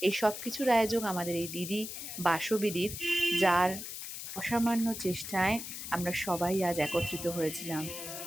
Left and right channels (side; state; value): left; noise; hiss, 8 dB below the sound